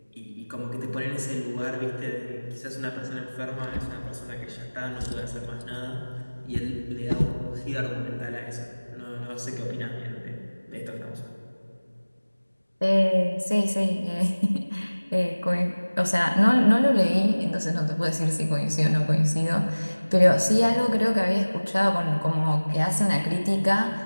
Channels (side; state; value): both; inverted; correlation -1.00